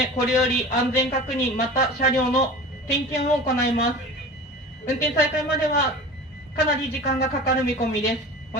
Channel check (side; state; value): both; normal; correlation 0.36